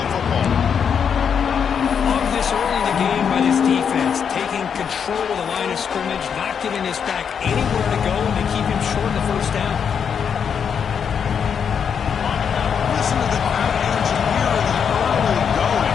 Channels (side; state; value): right; quieter; 7.2 dB